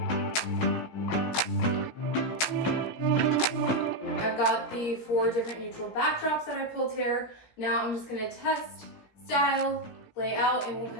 I've got the 4 different neutral backdrops that I pulled here. Now I'm just gonna test, style, lay out, and we'll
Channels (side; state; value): right; late; 17 ms